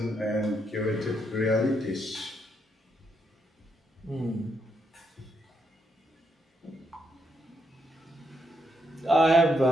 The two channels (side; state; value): both; normal; correlation 0.79